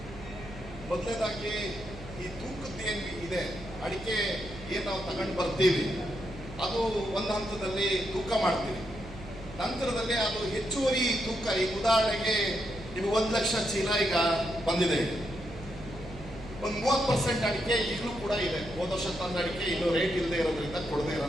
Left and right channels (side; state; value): right; noise; hum, 15 dB below the sound